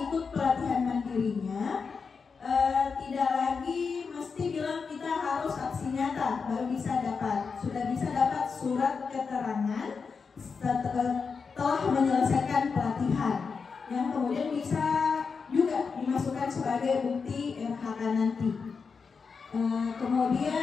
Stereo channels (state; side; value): quieter; right; 5.3 dB